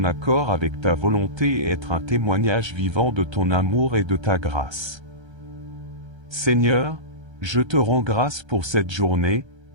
accord avec ta volonté et être un témoignage vivant de ton amour et de ta grâce. Seigneur, je te rends grâce pour cette journée,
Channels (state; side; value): late; left; 1.3 ms